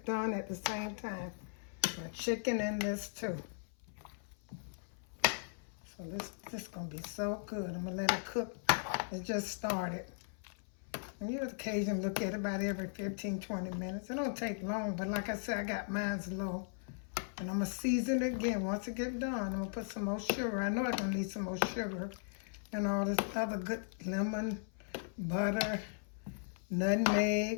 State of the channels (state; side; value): silent; right; 53 dB below the other